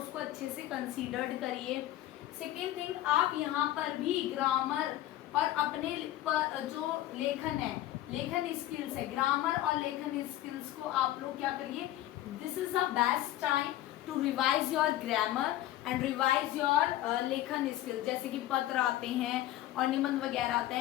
अच्छे से कंसीडर्ड करिए। सेकेंड थिंग, आप यहाँ पर भी ग्रामर और अपने जो लेखन स्किल्स है, ग्रामर और लेखन स्किल्स को आप लोग क्या करिए, this is the best time to revise your grammar and revise your लेखन स्किल्स। जैसे कि पत्र आते हैं और निबंध वगैरह आते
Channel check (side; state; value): right; quieter; 14.4 dB